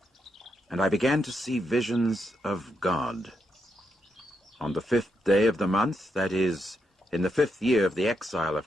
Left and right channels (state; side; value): normal; both; correlation 0.82